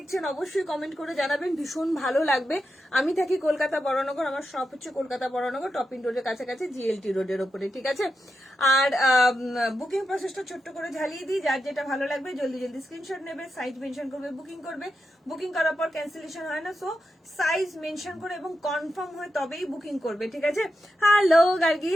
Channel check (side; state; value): both; normal; correlation 0.88